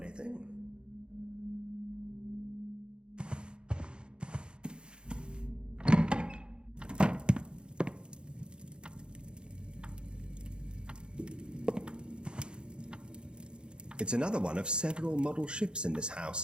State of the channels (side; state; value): left; late; 0.051 ms